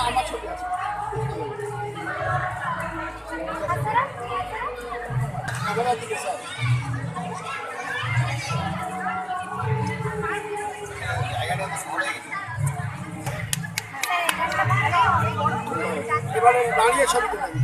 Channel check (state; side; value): identical; both; correlation 1.00